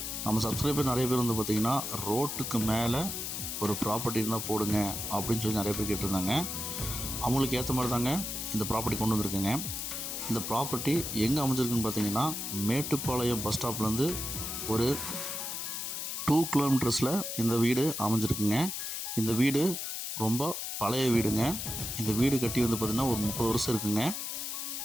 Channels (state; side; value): noise; left; hiss, 4 dB below the sound